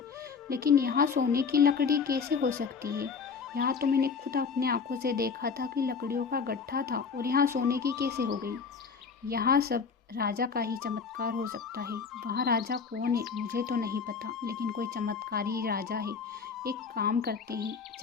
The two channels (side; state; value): right; quieter; 5.6 dB